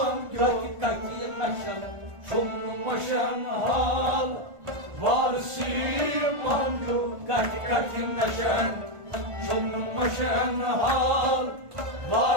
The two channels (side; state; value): left; late; 1.5 ms